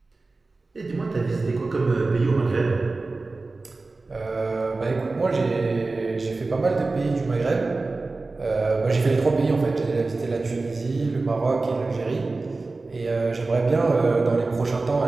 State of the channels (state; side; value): quieter; left; 3.5 dB